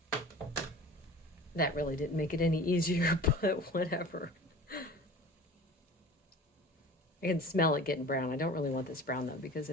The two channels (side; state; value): both; normal; correlation 0.40